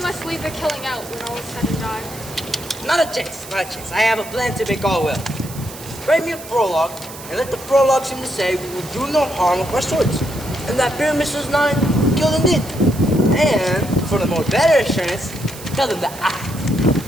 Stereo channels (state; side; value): noise; right; hiss, 15 dB below the sound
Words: must leave the killing out when all is said and done. Not a chance. I have a plan to make all well. Write me a prologue, and let the prologue seem to say we will do no harm with our swords, and that Pyramus was not killed indeed. And, for the more better assurance, tell them that I,